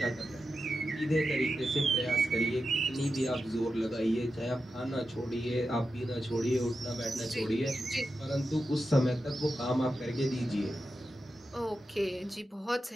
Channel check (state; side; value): normal; both; correlation 0.90